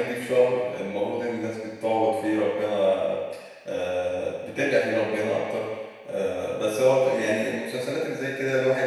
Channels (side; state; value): both; identical; correlation 1.00